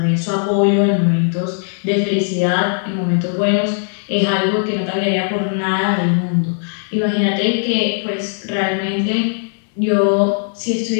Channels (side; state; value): right; silent; digital silence